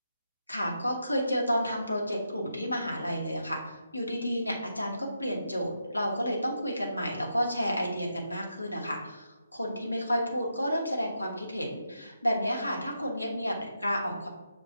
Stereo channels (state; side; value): inverted; both; correlation -0.83